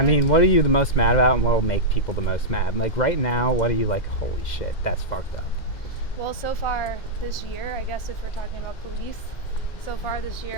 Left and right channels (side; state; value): right; late; 2.1 ms